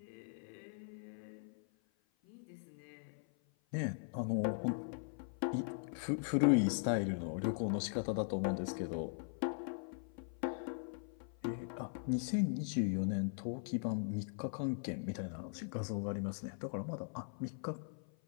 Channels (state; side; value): silent; right; 51 dB below the other